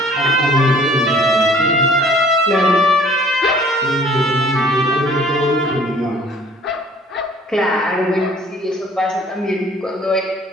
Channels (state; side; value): normal; both; correlation 0.54